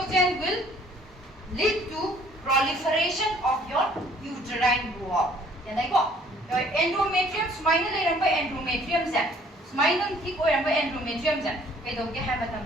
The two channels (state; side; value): normal; both; correlation 0.58